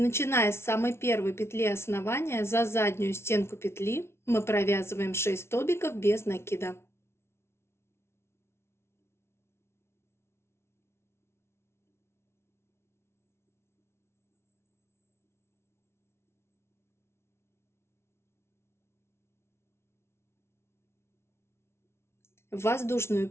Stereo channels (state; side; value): late; right; 0.12 ms